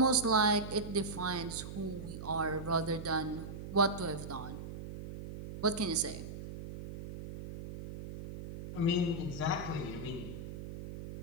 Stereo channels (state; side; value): noise; right; hum, 9 dB below the sound